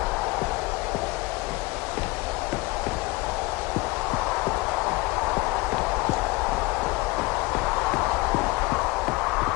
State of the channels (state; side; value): quieter; right; 22.9 dB